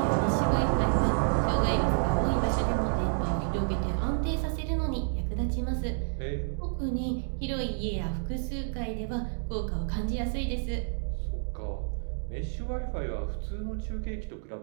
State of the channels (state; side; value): silent; left; digital silence